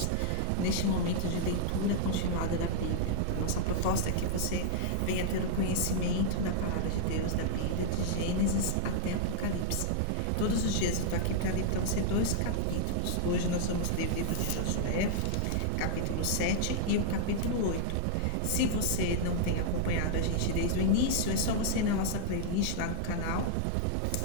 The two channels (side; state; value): both; different; correlation -0.01